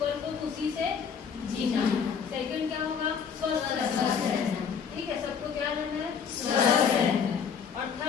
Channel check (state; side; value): quieter; right; 6.7 dB